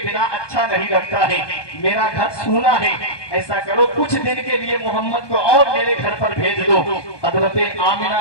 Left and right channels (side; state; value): right; late; 1.2 ms